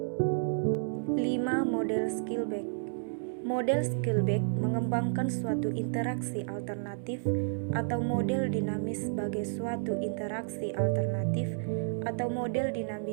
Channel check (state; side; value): silent; left; 57 dB below the other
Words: Model Skillback. Model Skillback mengembangkan suatu interaksi alternatif atau model dinamis sebagai suatu interaksi alternatif atau model